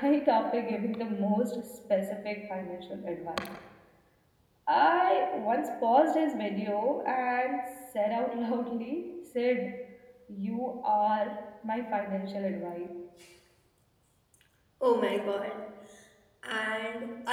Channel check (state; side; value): identical; both; correlation 1.00